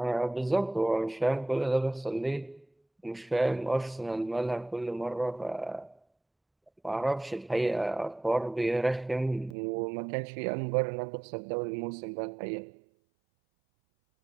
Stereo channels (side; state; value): left; drops out; at 9.6 s